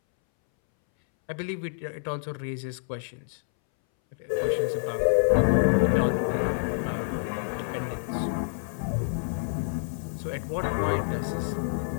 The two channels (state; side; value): silent; right; 60 dB below the other